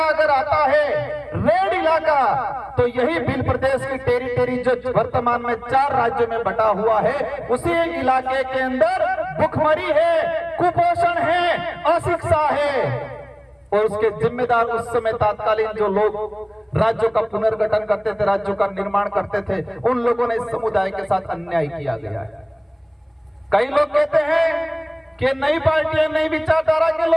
अगर आता है, रेड इलाका, तो यही बिल प्रदेश की टेरिटरी जो वर्तमान में 4 राज्यों में बटा हुआ है, उसी इलाके के अंदर भुखमरी है, कुपोषण है, अशिक्षा है। और उसके जिम्मेदार उस समय तत्कालीन जो लोग राज्यों का पुनर्गठन करते थे, राज्यों का निर्माण करते थे, उन लोगों ने इस समुदाय के साथ अन्याय किया गया है। कई लोग कहते हैं कि नई पार्टियां, नई विचारधारा के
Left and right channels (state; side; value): identical; both; correlation 1.00